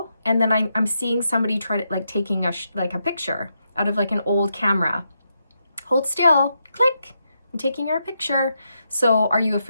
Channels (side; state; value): both; inverted; correlation -0.83